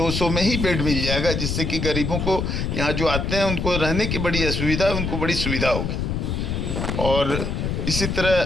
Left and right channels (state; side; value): noise; left; rumble, 1 dB below the sound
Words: में ही बेड मिल जाएगा, जिससे कि गरीबों को यहाँ जो आते हैं उनको रहने की बड़ी असुविधा है, उनको बड़ी सुविधा होगी। और इसी